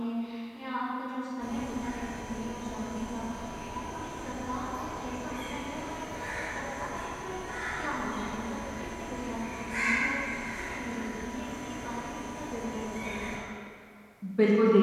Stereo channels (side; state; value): both; identical; correlation 1.00